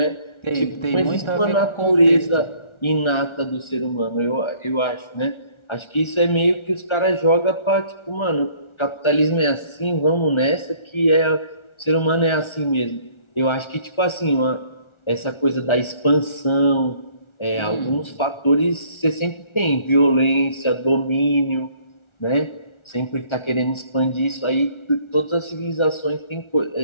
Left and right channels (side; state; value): right; late; 1.4 ms